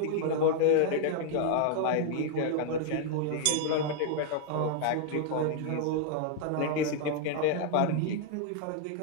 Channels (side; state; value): both; different; correlation 0.00